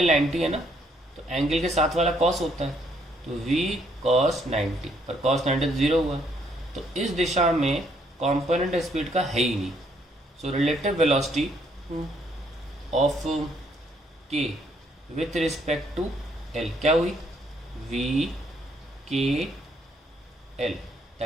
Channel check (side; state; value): both; normal; correlation 0.69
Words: 90 है ना, तो एंगल के साथ वाला कॉस होता है, तो v cos 90, पर cos 90 0 हुआ, तो इस दिशा में कंपोनेंट स्पीड का है ही नहीं। So relative velocity of k with respect to l क्या हुई, v k l,